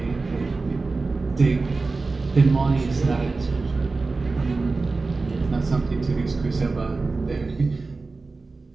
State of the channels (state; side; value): quieter; left; 3.8 dB